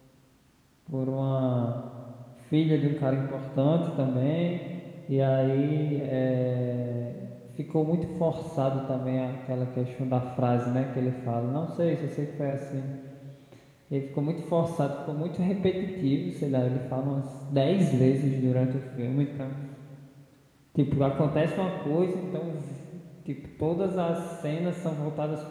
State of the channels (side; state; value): both; identical; correlation 1.00